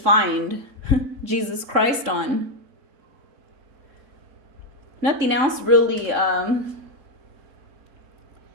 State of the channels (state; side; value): late; left; 3.6 ms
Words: Jesus Christ on. Nothing else really had